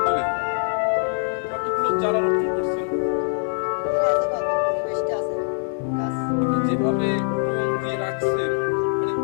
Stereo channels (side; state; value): right; silent; 63 dB below the other